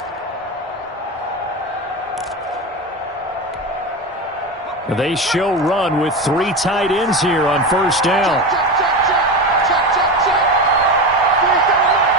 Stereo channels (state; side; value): normal; both; correlation 0.22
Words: They show run with 3 tight ends here on first down.